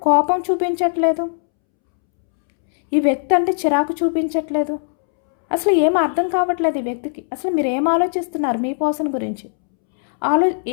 కోపం చూపించట్లేదు, ఈ వ్యక్తి అంటే చిరాకు చూపించట్లేదు. అసలు ఏం అర్థం కావట్లేదు ఈ వ్యక్తికి. అసలు మీరు ఏం ఆలోచిస్తున్నారు మీ పర్సన్ గురించి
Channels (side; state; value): right; silent; 67 dB below the other